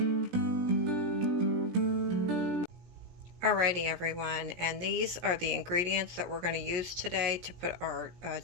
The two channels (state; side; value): late; left; 17 ms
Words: Alrighty everyone, and these are the ingredients that we're going to use today to put our